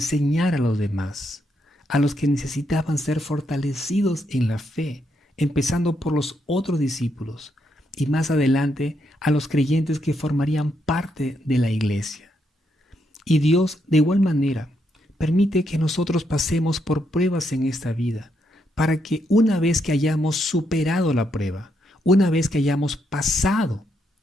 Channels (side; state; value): both; normal; correlation 0.78